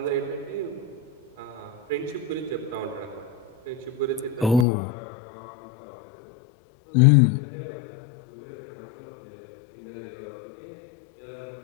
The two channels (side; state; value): right; drops out; at 4.7 s